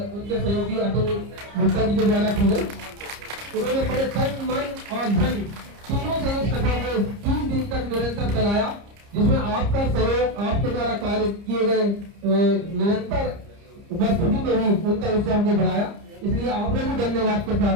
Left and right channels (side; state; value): left; late; 30 ms